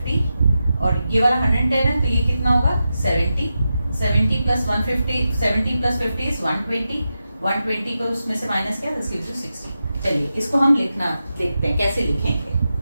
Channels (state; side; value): inverted; both; correlation -0.90